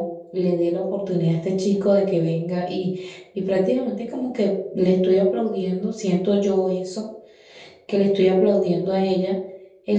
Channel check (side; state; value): both; identical; correlation 1.00